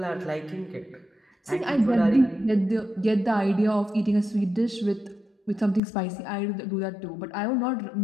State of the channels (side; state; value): right; drops out; at 5.8 s